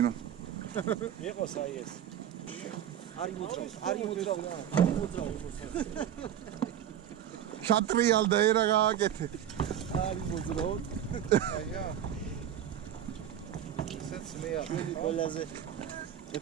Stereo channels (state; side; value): quieter; left; 10.2 dB